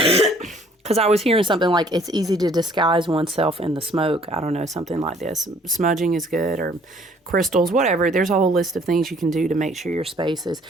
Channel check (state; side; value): normal; both; correlation 0.59